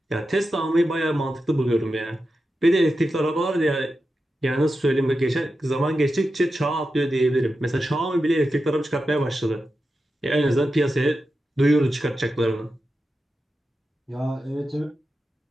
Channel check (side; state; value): both; normal; correlation 0.90